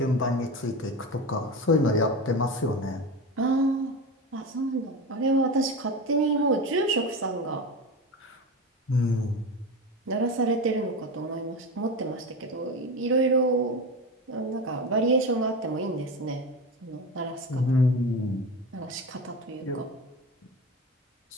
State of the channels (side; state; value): both; normal; correlation 0.24